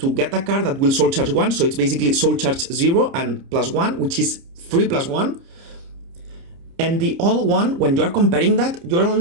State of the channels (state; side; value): late; left; 30 ms